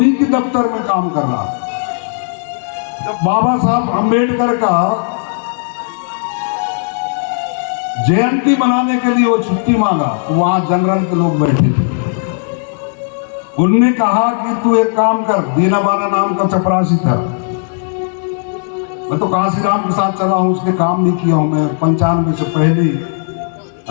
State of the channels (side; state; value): right; silent; 60 dB below the other